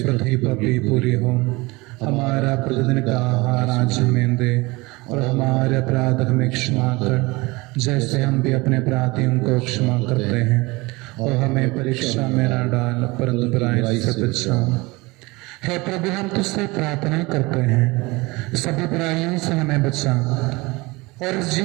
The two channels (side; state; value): left; quieter; 23.3 dB